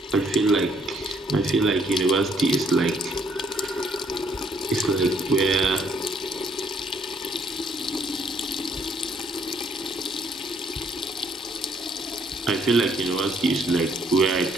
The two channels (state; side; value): normal; both; correlation 0.67